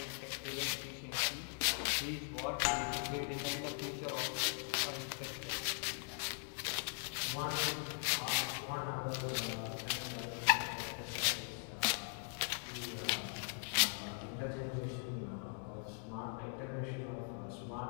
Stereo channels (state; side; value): silent; right; 51 dB below the other